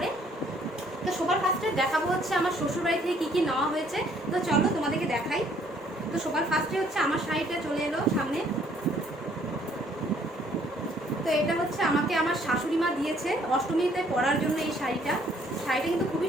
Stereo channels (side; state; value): both; normal; correlation 0.63